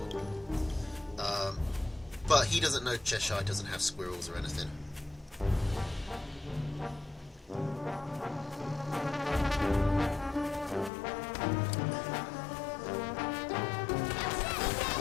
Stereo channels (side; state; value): right; drops out; at 10.9 s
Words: But he doesn't know Cheshire doesn't have squirrels or anything.